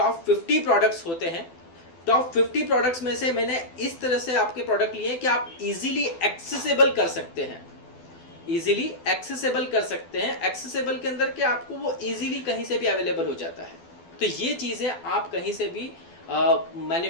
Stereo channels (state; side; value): late; right; 12 ms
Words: 50 प्रोडक्ट्स होते हैं। टॉप 50 प्रोडक्ट्स में से मैंने इस तरह से आपके प्रोडक्ट लिए कि आप इजीली एक्सेसिबल कर सकते हैं, इजीली एक्सेसिबल कर सकते हैं। एक्सेसिबल के अंदर कि आपको वो इजीली कहीं से भी अवेलेबल हो जाता है। तो ये चीज़ें आप कहीं से भी